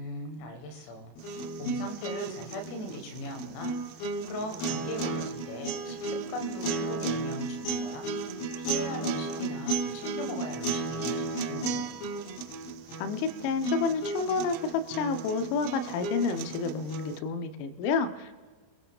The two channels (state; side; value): late; right; 32 ms